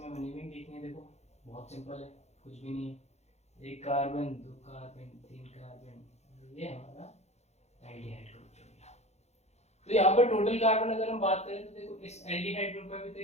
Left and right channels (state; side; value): late; right; 0.32 ms